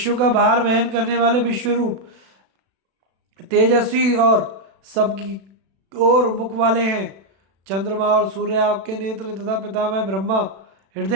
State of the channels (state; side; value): late; left; 36 ms